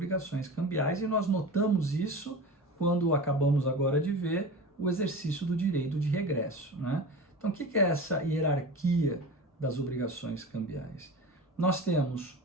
cambiais e nós notamos isso quando acabamos agora de ver o exercício do direito de regresso, né? Então, o que é essa hierarquia das obrigações cambiais? Nós temos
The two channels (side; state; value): both; normal; correlation 0.32